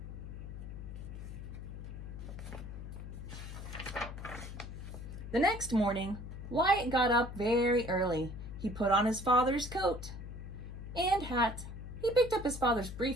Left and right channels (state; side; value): noise; left; hum, 9 dB below the sound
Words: The next morning, Wyatt got up very early. He put on his father's coat and hat. He picked up his father's